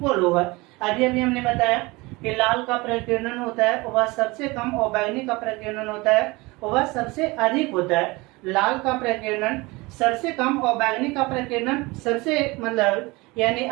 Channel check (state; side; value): quieter; left; 23.5 dB